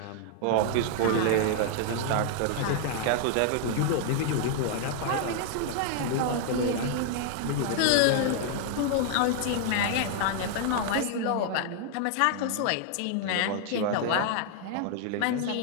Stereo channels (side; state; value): both; different; correlation 0.00